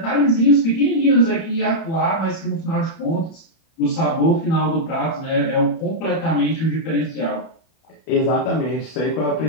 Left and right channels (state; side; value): late; right; 31 ms